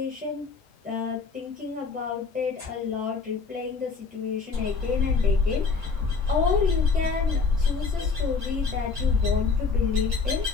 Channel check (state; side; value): quieter; right; 4.8 dB